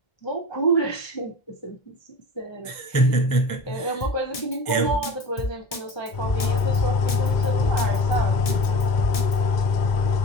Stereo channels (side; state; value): right; late; 1.7 ms